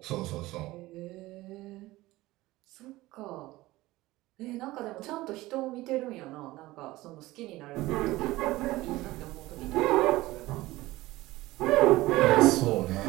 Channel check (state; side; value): quieter; left; 18.5 dB